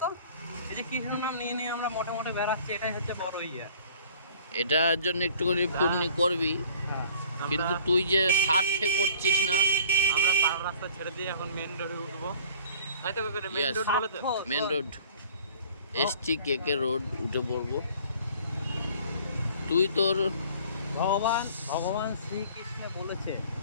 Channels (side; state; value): both; inverted; correlation -0.51